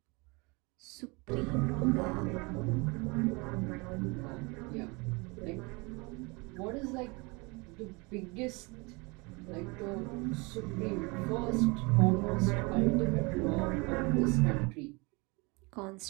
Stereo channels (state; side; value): quieter; left; 27.7 dB